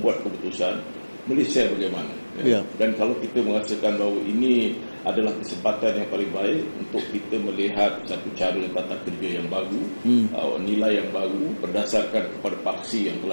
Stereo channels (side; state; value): both; inverted; correlation -1.00